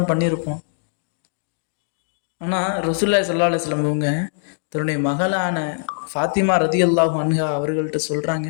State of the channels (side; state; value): right; silent; digital silence